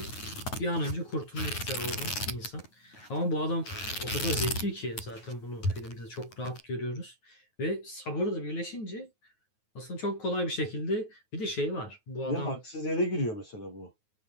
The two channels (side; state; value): right; late; 9.3 ms